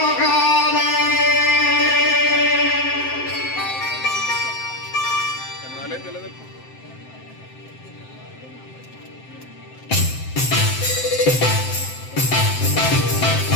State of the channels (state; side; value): late; right; 7.7 ms